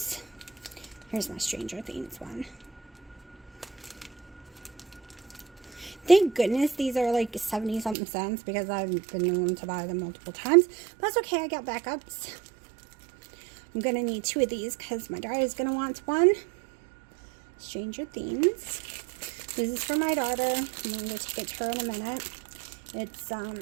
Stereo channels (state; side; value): drops out; left; at 8.0 s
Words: Here's my Stranger Things one. Thank goodness these are like 70 something cents because I've been known to buy them multiple times. But that's okay, I got backups. I'm going to need 2 of these because my daughter is going to want one. Stranger Things. This is for my daughter. I'm going to take it to her in a minute. It's